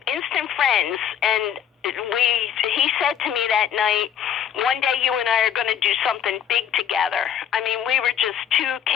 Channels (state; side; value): quieter; right; 9.1 dB